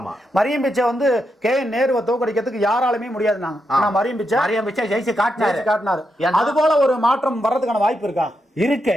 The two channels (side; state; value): both; normal; correlation 0.84